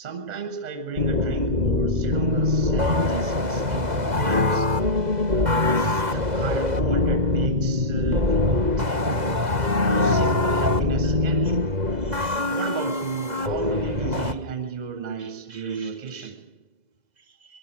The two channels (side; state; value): left; late; 2.0 ms